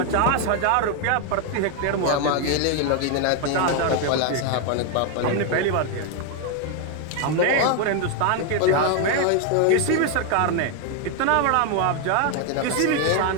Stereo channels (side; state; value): both; different; correlation 0.01